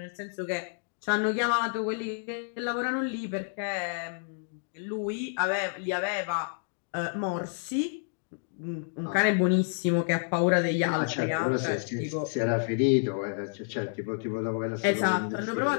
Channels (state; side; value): silent; right; digital silence